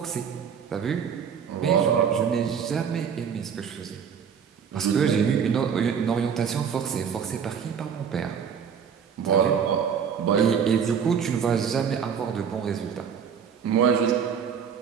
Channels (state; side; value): quieter; left; 7.2 dB